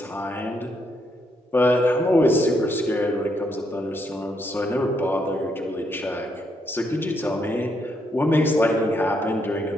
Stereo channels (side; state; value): both; normal; correlation 0.76